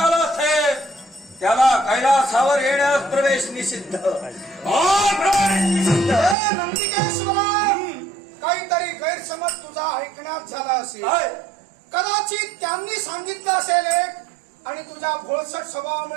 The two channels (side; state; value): left; drops out; at 6.4 s